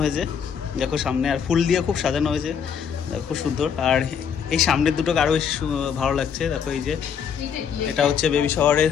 হয়েছে। দেখো সামনে আর ফুল দিয়ে খুব সাজানো হয়েছে, খুব সুন্দর। আর এই সামনের দুটোকে আরও বেশি ভালো লাগছে। দেখো এই যে এটা হচ্ছে বেবি শাওয়ারের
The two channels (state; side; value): quieter; right; 7.4 dB